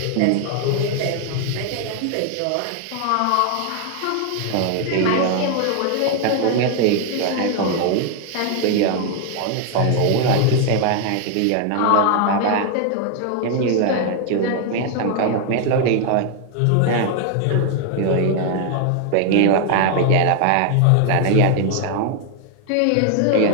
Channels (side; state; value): both; different; correlation 0.00